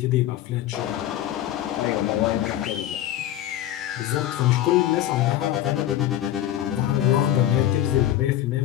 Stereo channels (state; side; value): quieter; right; 12.5 dB